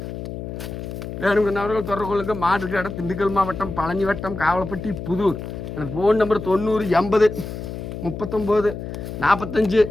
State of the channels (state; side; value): noise; left; hum, 8 dB below the sound